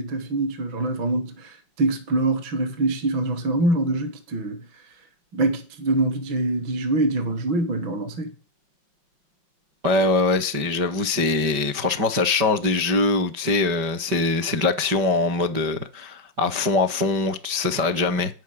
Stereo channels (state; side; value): late; left; 5.2 ms